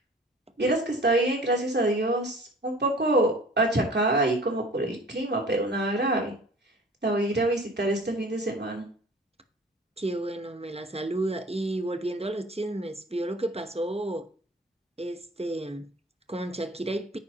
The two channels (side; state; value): both; normal; correlation 0.46